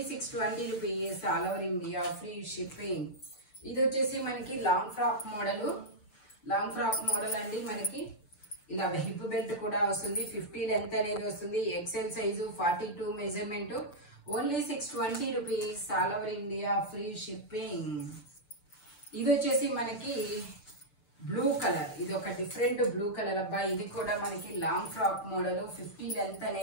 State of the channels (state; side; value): late; right; 6.7 ms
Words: 620 rupees, all over India, free shipping. ఇది వచ్చేసి మనకి లాంగ్ ఫ్రాక్ మోడల్ అండి. మనకి ఇలా హిప్ బెల్ట్ కూడా వస్తుంది. 50 లెంత్ అనేది వస్తుంది. XL size, 42 measurement. Only 620 rupees, all over India, free shipping. ఇది వచ్చేసి మనకి బ్లూ కలర్. ఇది ఒక డిఫరెంట్ బ్లూ కలర్ అబ్బా. ఇది కూడా మనకి లాంగ్ ఫ్రాక్ మోడల్, 50 లెంత్